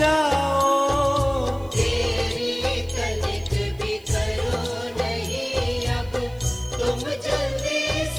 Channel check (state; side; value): noise; right; hiss, 28 dB below the sound